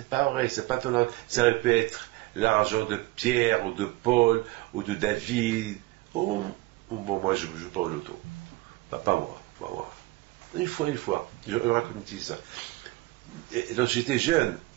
pas vrai, c'est pas ton argent. Ça aurait pu être l'argent de Pierre, ou de Paul, ou de David. Ou bon, moi je ne joue pas au loto. Pas moi. Une fois. Je raconte ça. Lorsque j'étais jeune,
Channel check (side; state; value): left; quieter; 20.4 dB